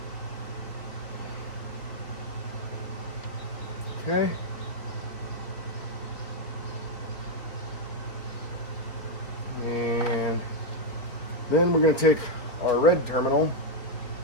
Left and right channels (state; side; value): late; right; 4.0 ms